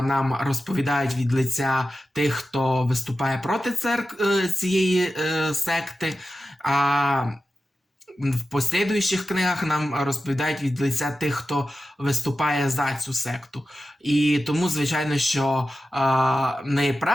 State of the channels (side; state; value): both; normal; correlation 0.93